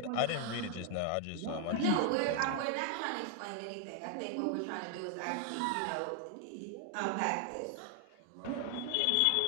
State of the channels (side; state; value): both; different; correlation 0.00